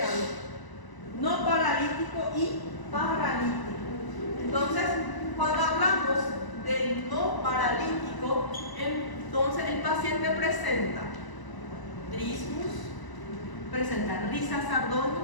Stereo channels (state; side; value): late; right; 1.0 ms